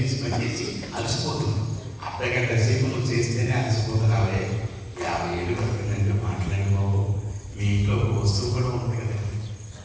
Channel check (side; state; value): both; identical; correlation 1.00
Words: అలసిపోతుంది. అర్ధగంట సేపు నువ్వు చేస్తేనే అలసిపోతున్నావే. 50 ఏళ్ళు పడుతుందంటే మాట్లాడిపోవు. మీ ఇంట్లో వస్తువు కూడా ఉంది కదా,